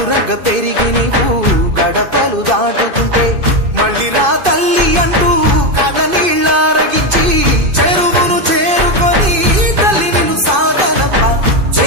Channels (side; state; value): left; late; 2.5 ms